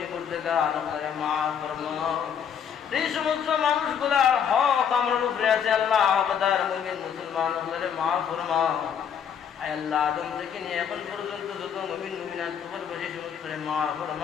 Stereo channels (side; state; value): right; quieter; 7.9 dB